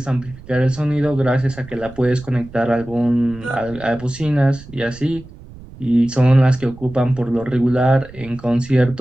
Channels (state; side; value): noise; right; rumble, 19 dB below the sound